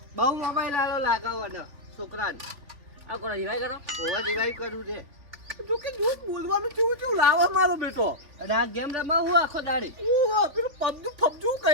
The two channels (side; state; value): left; late; 3.4 ms